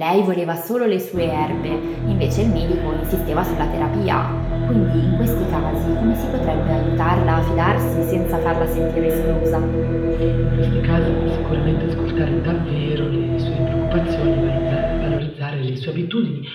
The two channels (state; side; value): identical; both; correlation 1.00